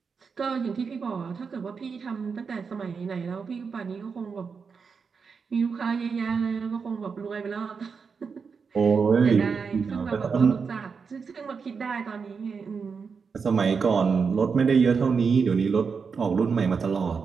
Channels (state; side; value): quieter; left; 5.5 dB